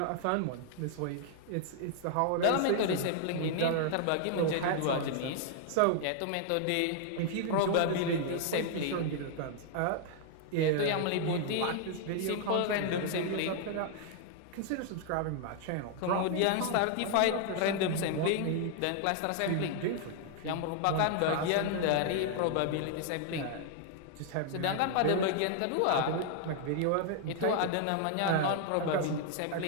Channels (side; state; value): both; different; correlation 0.00